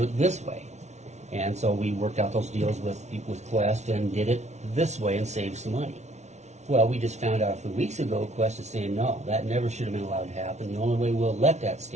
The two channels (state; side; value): late; left; 0.32 ms